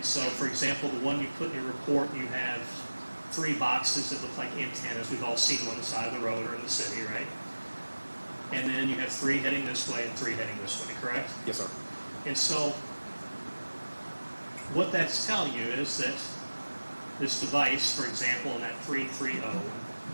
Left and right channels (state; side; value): inverted; both; correlation -1.00